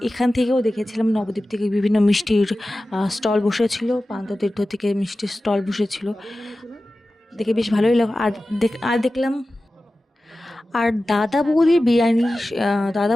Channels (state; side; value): normal; both; correlation 0.95